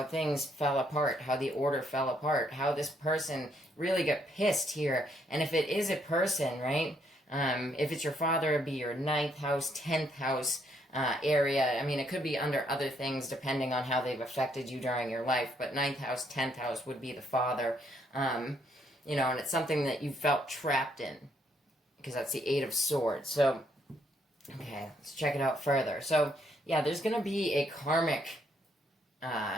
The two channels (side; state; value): both; normal; correlation 0.71